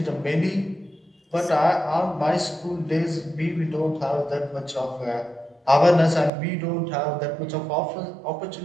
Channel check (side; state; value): left; drops out; at 6.3 s